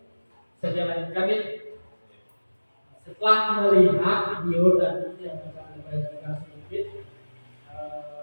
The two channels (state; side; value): inverted; both; correlation -1.00